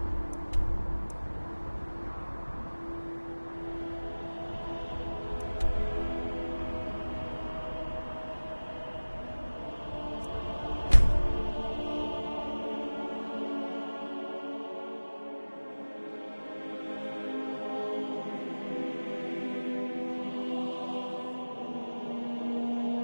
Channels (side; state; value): both; inverted; correlation -1.00